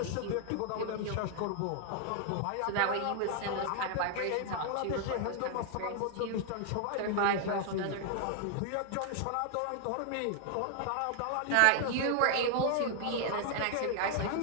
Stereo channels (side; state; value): both; different; correlation 0.00